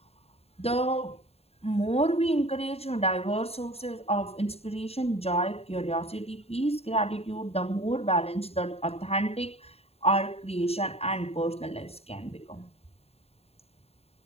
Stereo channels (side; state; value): right; late; 0.29 ms